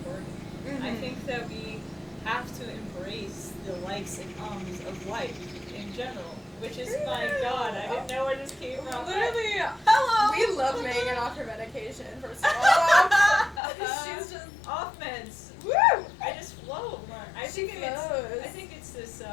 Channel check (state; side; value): drops out; right; at 13.6 s